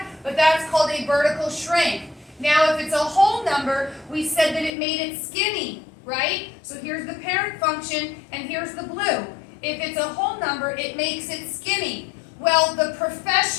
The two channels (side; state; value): right; drops out; at 4.7 s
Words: but that's called a vertical shrink. Now if it's a whole number, we said that it made it skinny, right? So here's the parent function and here's the blue. If it's a whole number, it makes it skinny. Well, the